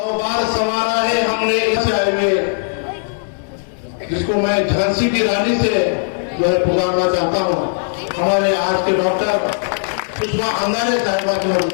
बार संवारा है हमने चाय में, जिसको मैं झांसी की रानी से जो है पुकारना चाहता हूँ। हमारे आज के डॉक्टर सुषमा अंगारे साहिबा की मैं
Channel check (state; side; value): silent; right; digital silence